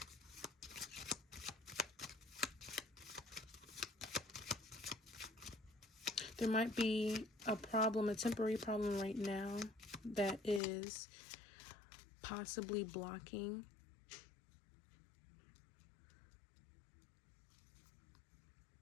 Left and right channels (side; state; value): right; drops out; at 10.6 s